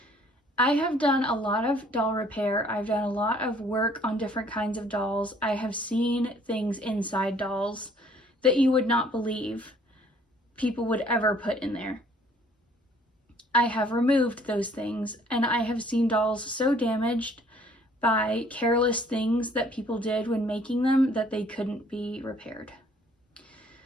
I have done a lot of doll repair. I've done a lot of work on different kinds of dolls. I have seen things inside dolls that you would not believe people would ever put in there. I have removed those things, and I have seen dolls so damaged by careless things that people did when making them that they couldn't be repaired.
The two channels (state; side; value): normal; both; correlation 0.59